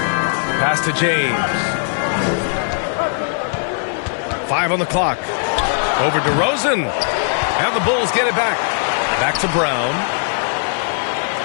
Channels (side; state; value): right; silent; digital silence